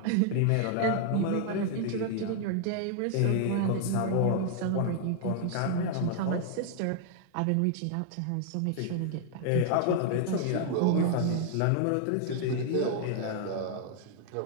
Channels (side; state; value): both; different; correlation 0.00